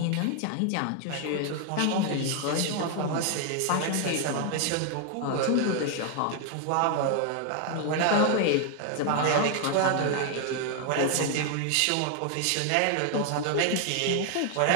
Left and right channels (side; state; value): both; different; correlation 0.00